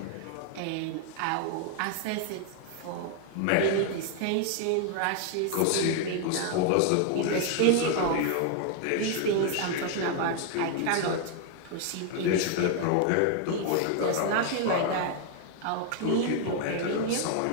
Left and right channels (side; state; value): both; different; correlation 0.00